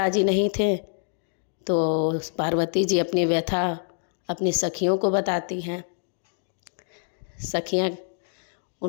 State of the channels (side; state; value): right; silent; digital silence